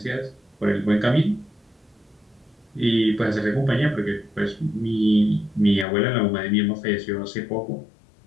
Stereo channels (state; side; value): drops out; right; at 5.9 s